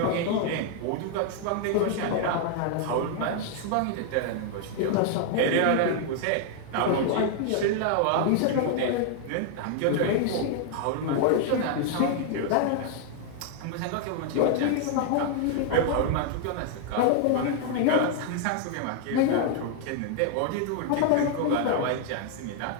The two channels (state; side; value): different; both; correlation 0.00